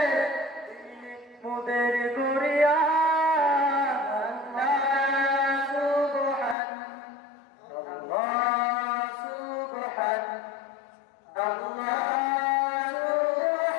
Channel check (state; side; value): drops out; right; at 6.6 s